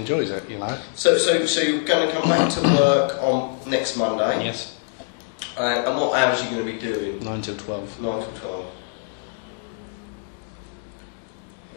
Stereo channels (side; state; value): right; silent; digital silence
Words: it, So you're going to come back to work on next Monday? Yes. And what hours are you going to be doing? 9 till 12. 9 till 12.